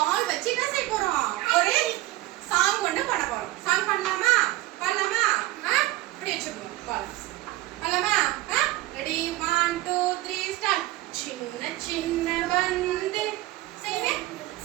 வச்சு என்ன செய்ய போறோம் ஒரு சாங் ஒன்னு பாட போறோம் சாங் பண்ணலாமா பண்ணலாமா இப்படி வச்சுக்கோங்க பால் பண்ணலாமா ரெடி 1 2 3 ஸ்டார்ட் சின்ன சின்ன வந்து செய்வே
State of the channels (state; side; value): quieter; left; 17.1 dB